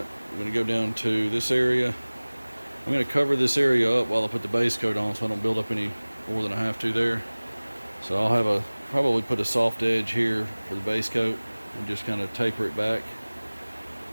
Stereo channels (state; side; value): inverted; both; correlation -1.00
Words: I'm going to go down to this area. I'm going to cover this area up while I put the base coat on so I don't build up any more than I have to there. So I'll have probably put a soft edge here for the base coat and just kind of taper it back.